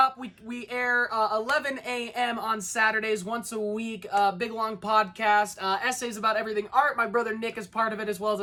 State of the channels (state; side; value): identical; both; correlation 1.00